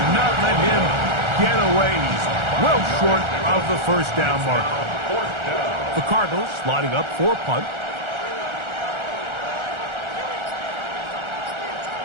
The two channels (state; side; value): late; left; 1.4 ms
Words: not let him get away. He's well short of the first down mark. The Cardinals lining up for a punt.